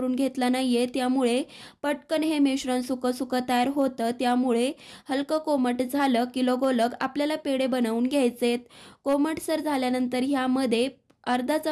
घेतला नाहीये, त्यामुळे पटकन हे मिश्रण सुकं सुकं तयार होतं. त्यामुळे हलकं कोमट झालं की लगोलग आपल्याला पेढे बनवून घ्यायचेत. कोमटसर झाल्यानंतर ह्यामध्ये अर्धा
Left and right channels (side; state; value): both; identical; correlation 1.00